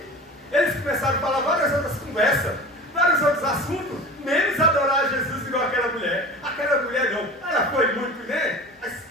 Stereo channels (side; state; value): both; normal; correlation 0.36